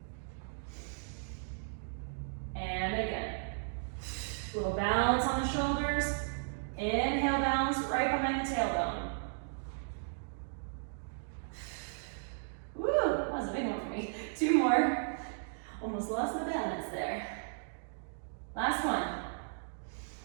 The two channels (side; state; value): left; silent; digital silence